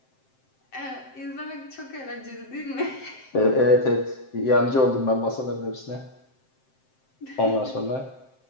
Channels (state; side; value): late; right; 7.6 ms